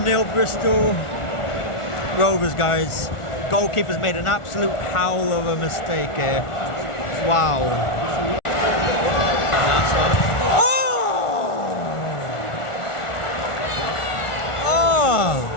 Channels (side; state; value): right; late; 1.4 ms